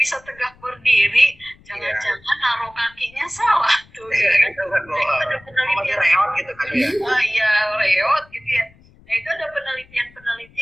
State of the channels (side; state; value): left; noise; rumble, 27 dB below the sound